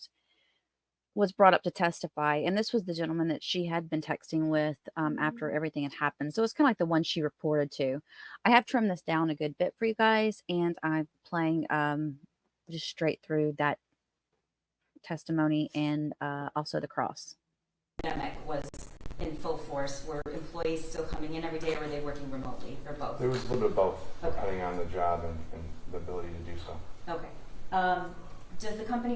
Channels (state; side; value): identical; both; correlation 1.00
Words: was brought up to testify. And this was the gentleman that she had been texting with after everything had happened. So it's kind of like the one she reported to. I have trimmed this down a good bit for you guys, and I'm playing just straight through that testimony and also the cross. Pandemic was in full force. Were employees still coming in every day, or were they working remotely, or both? It was a little bit of both, Okay. depending on the job and the ability to do so. Okay. Does the